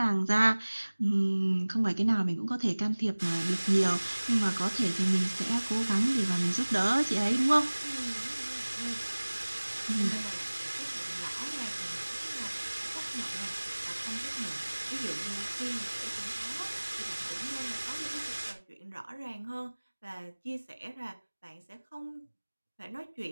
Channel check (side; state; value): both; inverted; correlation -1.00